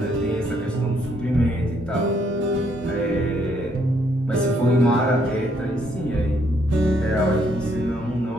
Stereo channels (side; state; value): both; normal; correlation 0.70